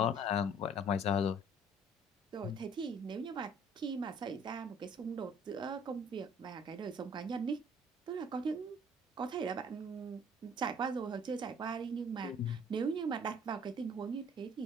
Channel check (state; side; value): normal; both; correlation 0.55